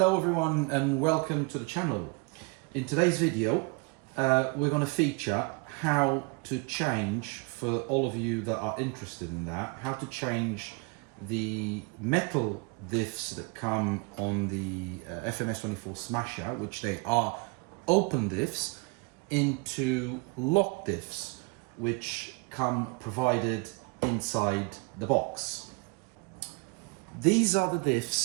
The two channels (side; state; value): left; quieter; 31.4 dB